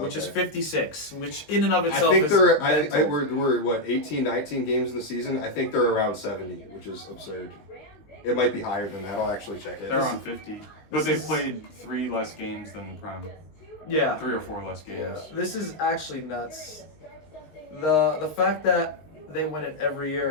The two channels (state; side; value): late; right; 19 ms